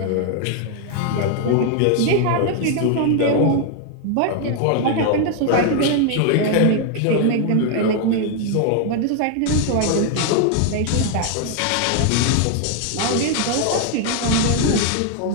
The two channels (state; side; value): different; both; correlation 0.00